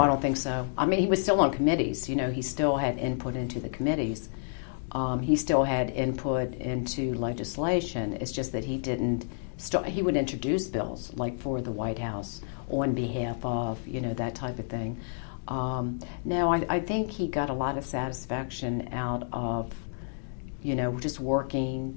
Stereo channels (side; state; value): right; silent; digital silence